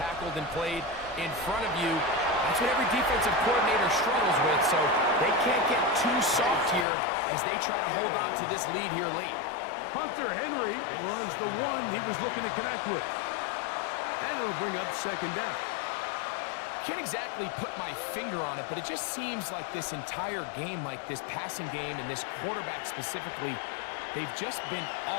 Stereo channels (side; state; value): right; drops out; at 6.9 s